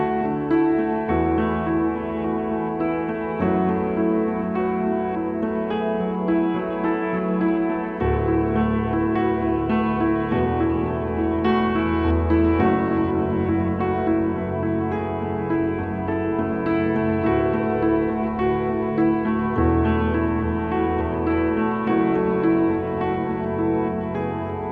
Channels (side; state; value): both; identical; correlation 1.00